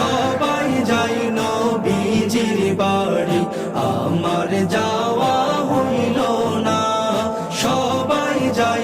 যাই নবীজির বাড়ি, আমার যাওয়া হইল না। সবাই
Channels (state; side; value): identical; both; correlation 1.00